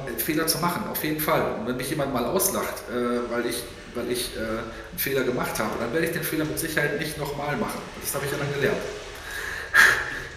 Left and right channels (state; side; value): identical; both; correlation 1.00